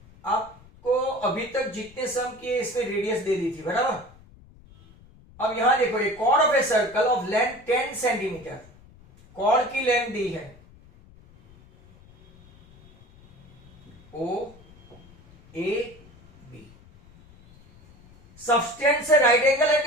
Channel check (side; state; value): left; noise; rumble, 25 dB below the sound